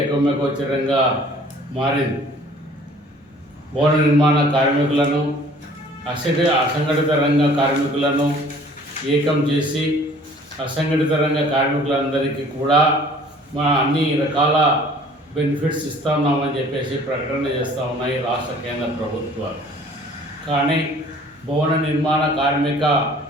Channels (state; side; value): normal; both; correlation 0.52